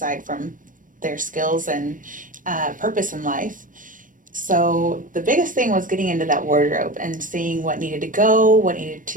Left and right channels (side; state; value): left; late; 0.38 ms